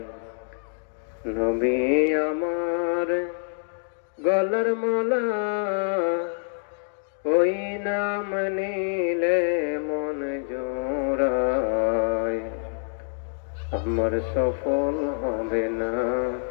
নবী আমার গলার মালা, ওই নাম নিলে মন জোড়ায়। আমার সফল হবে না,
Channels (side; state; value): right; silent; digital silence